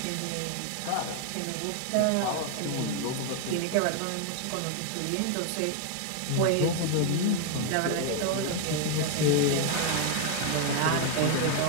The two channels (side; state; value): both; different; correlation 0.00